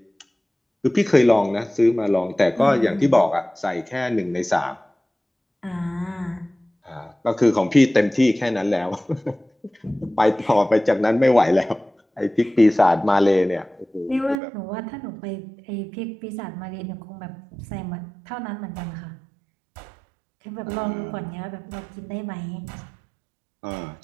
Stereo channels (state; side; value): drops out; left; at 14.4 s